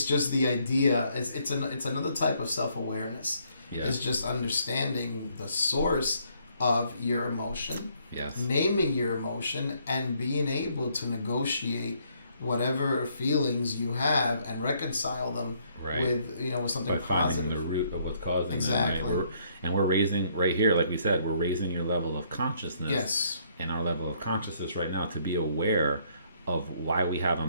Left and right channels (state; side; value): inverted; both; correlation -0.68